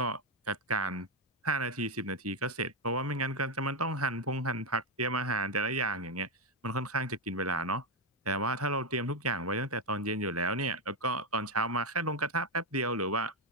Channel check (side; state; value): both; normal; correlation 0.06